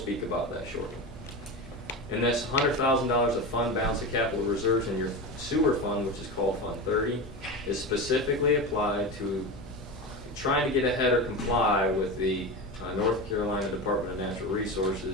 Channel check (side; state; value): both; normal; correlation 0.23